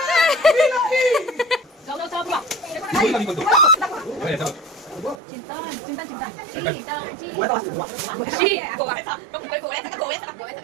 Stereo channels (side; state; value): left; drops out; at 5.2 s